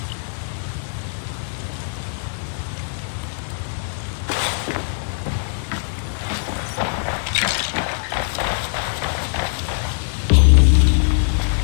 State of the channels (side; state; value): right; silent; digital silence